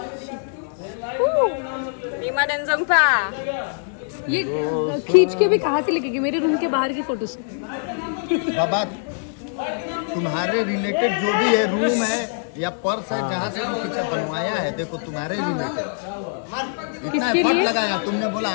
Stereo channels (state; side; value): silent; right; 64 dB below the other